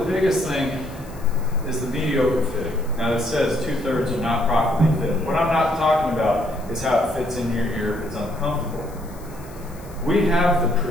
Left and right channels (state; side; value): noise; left; hiss, 23 dB below the sound